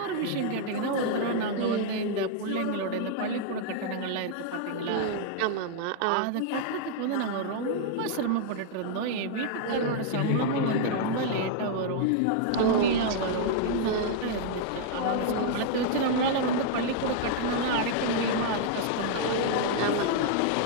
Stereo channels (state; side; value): different; both; correlation -0.01